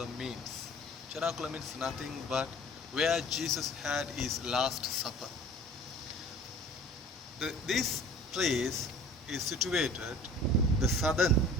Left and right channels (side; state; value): both; normal; correlation 0.46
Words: means. Cenaculum means nothing but where Jesus had his last supper. This place is situated the southern